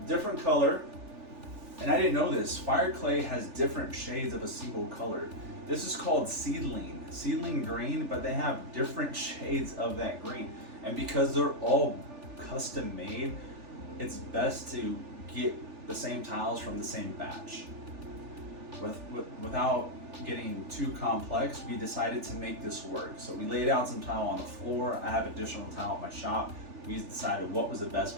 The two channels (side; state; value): left; late; 3.4 ms